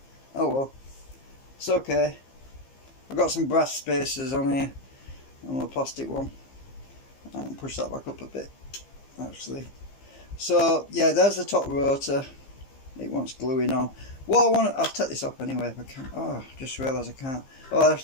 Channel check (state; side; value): late; right; 15 ms